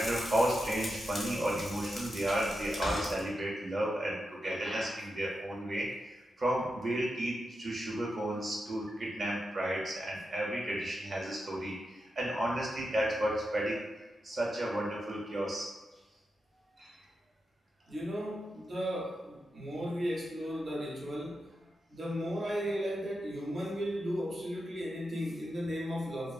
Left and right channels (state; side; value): normal; both; correlation 0.88